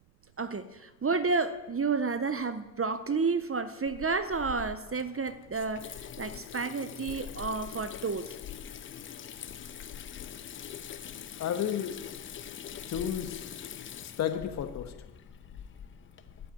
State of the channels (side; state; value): right; noise; rumble, 30 dB below the sound